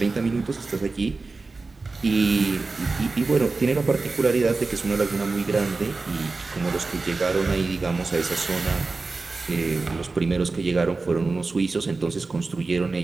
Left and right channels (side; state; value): left; quieter; 3.8 dB